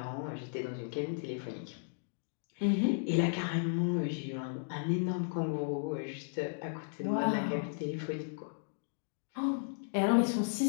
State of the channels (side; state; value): right; silent; digital silence